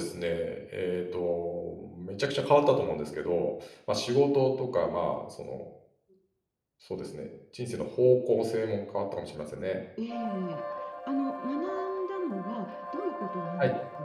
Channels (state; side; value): identical; both; correlation 1.00